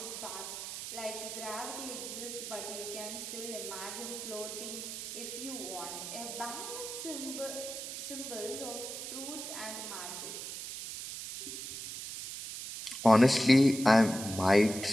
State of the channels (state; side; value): noise; right; hiss, 7 dB below the sound